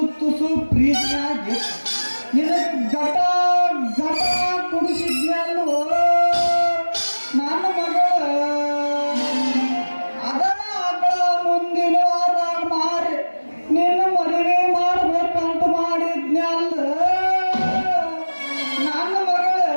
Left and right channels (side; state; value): both; inverted; correlation -1.00